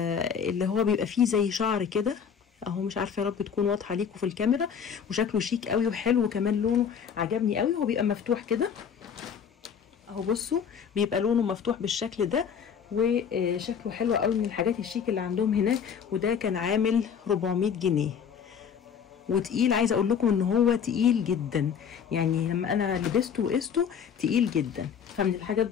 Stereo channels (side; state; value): right; quieter; 7.4 dB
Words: هو بيبقى فيه زي شعر كده اهو، مش عارفه يا رب تكون واضحه ليكم في الكاميرا. وشكله شيك قوي وحلو، وكمان لونه عجبني قوي. هو بيبقى مفتوح كده اهو، بصوا بيبقى لونه مفتوح بالشكل ده، وشكله حلو قوي، من الحاجات الشيك اللي عندهم هناك. وده كان عامل 400 جنيه وتقيل. عايزه اقول لكم ان هو تقيل جدا، يعني لما انا لبسته وقسته تقيل جدا. فمن الحاجات